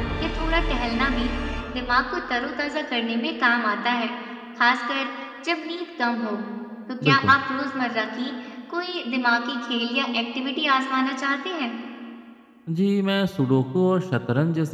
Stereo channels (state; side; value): identical; both; correlation 1.00